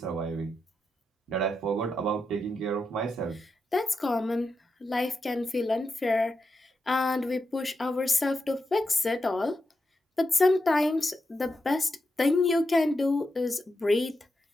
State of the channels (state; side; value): normal; both; correlation 0.87